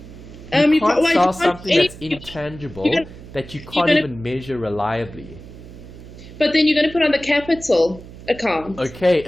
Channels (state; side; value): noise; right; hum, 16 dB below the sound